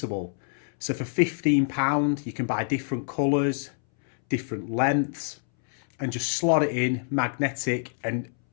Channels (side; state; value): right; silent; 61 dB below the other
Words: So for £15, you can buy different colours, different lengths, and just slot it in, magnetic, and